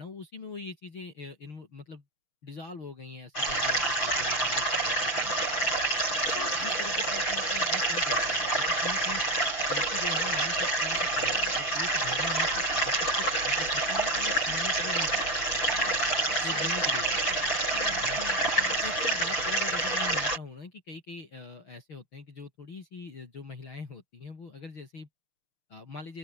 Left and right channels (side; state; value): right; late; 6.6 ms